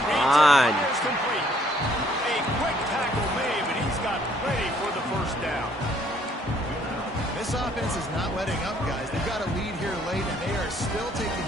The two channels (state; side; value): normal; both; correlation 0.64